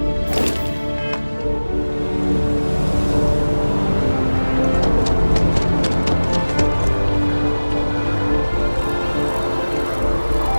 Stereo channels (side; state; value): both; inverted; correlation -1.00